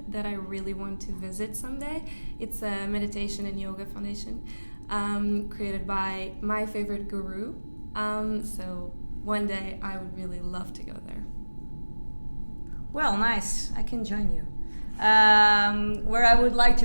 that I really want to visit someday. It's a meditation and yoga foundation created by my favorite guru. So one day I would really love to go there. Well, nice. I can join you. Where I would like to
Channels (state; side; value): inverted; both; correlation -1.00